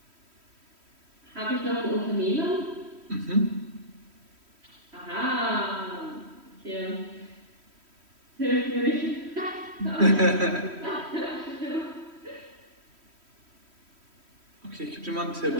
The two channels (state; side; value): late; left; 3.1 ms